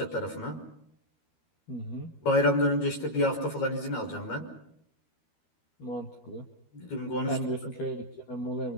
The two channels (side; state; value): right; late; 13 ms